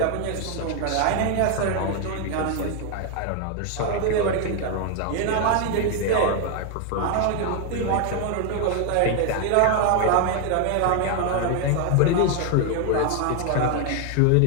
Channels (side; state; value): both; different; correlation 0.01